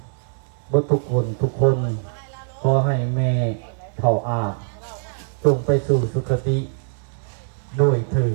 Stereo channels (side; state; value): left; silent; 62 dB below the other